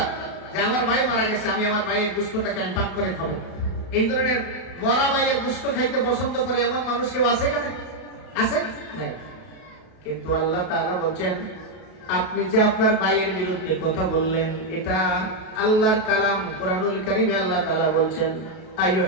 যে আমার ভাই মারা গেছে, আমি আমার ভাইয়ের গোশতটাকে আমি পাক করে খাবো? এই ধরনের মরা ভাইয়ের গোশত খাইতে পছন্দ করে এমন মানুষ কেউ আছে এখানে? আছে নাই? কিন্তু আল্লাহ তাআলা বলছেন, আপনি যে আপনার ভাইয়ের বিরুদ্ধে কথা বললেন, এটা আল্লাহর কালাম কোরআনুল কারীমে আল্লাহ তাআলা বলছেন,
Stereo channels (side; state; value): right; late; 32 ms